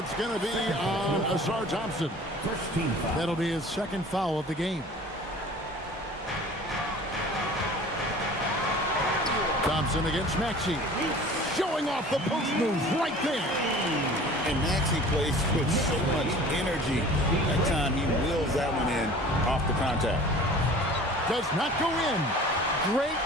going to be on Ausar Thompson. First team foul. That'll be his second foul of the game. Thompson against Maxey. Showing off the post moves right there. And Maxey plays with so much energy. That time he wheels that one in off the contact. Does not go in. Great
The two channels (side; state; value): both; normal; correlation 0.44